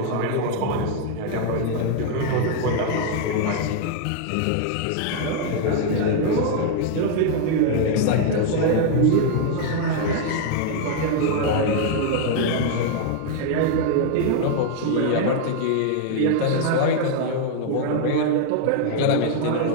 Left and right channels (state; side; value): different; both; correlation 0.00